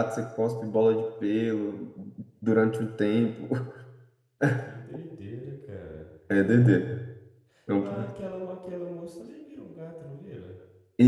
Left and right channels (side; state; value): both; identical; correlation 1.00